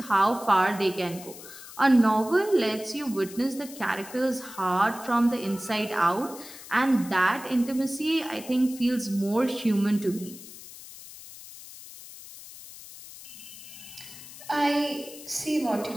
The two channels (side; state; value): left; noise; hiss, 16 dB below the sound